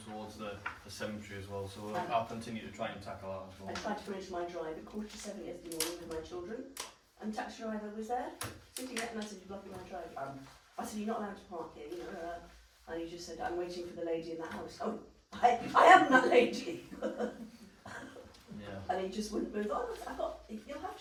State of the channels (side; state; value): both; identical; correlation 1.00